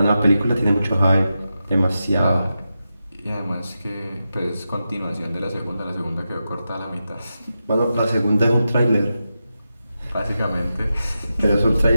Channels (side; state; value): both; inverted; correlation -0.90